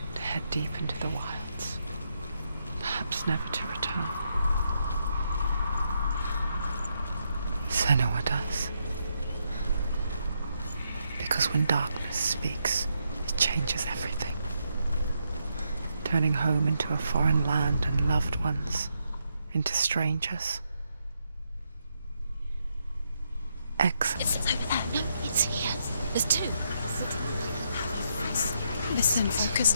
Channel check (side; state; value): both; inverted; correlation -0.79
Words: to head deep into the wilds, perhaps perhaps never to return. Senua does. Because when darkness speaks, it changes everything. Turning home into a foreign land and loved ones into strangers. Excellent. It's over there. No, it's here. There's two. Listen, focus,